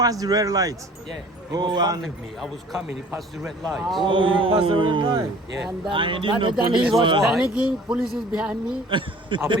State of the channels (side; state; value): both; normal; correlation 0.49